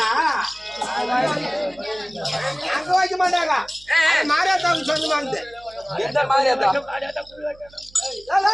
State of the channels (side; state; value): right; noise; hum, 26 dB below the sound